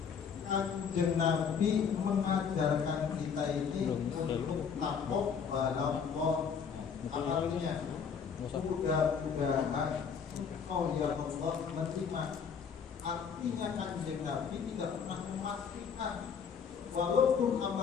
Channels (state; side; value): quieter; right; 6.7 dB